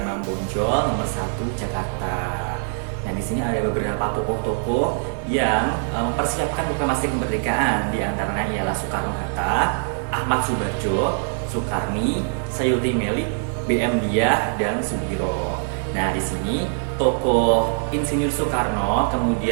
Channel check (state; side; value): silent; left; digital silence